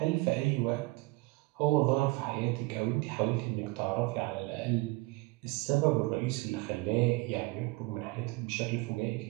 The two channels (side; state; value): left; quieter; 23.6 dB